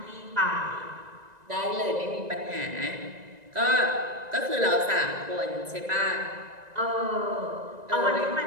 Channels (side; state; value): left; late; 1.9 ms